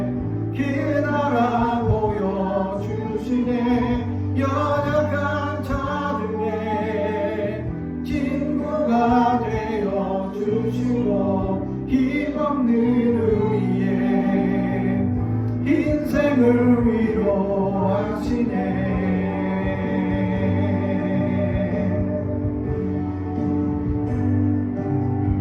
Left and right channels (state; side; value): identical; both; correlation 1.00